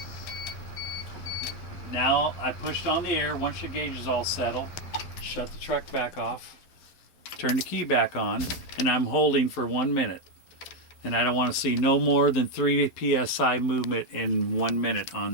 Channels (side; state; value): right; late; 12 ms